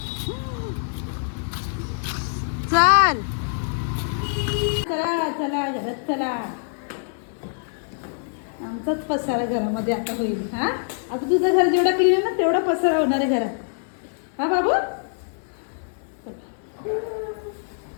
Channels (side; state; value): right; silent; 62 dB below the other